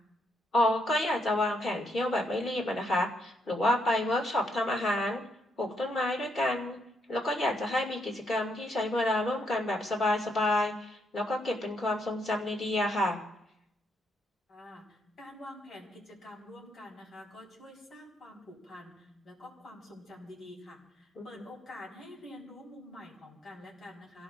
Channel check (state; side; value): normal; both; correlation 0.76